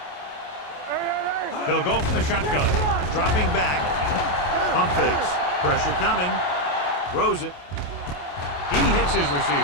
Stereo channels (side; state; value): right; late; 28 ms